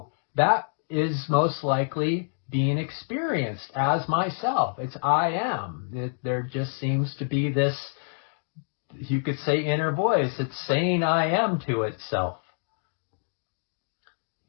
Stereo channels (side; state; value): right; silent; digital silence